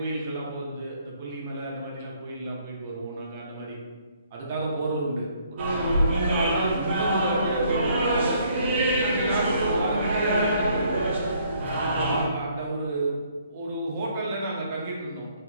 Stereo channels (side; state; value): both; inverted; correlation -0.65